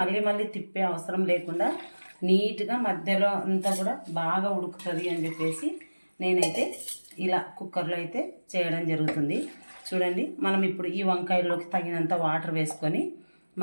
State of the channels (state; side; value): inverted; both; correlation -1.00